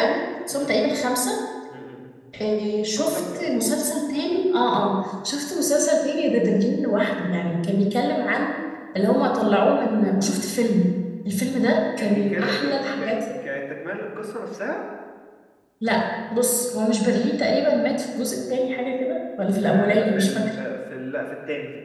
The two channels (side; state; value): both; identical; correlation 1.00